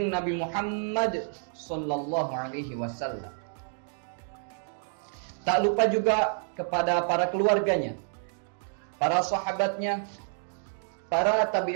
Nabi Muhammad sallallahu alaihi wasallam. Tak lupa juga kepada para keluarganya, para sahabatnya, para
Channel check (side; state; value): left; silent; digital silence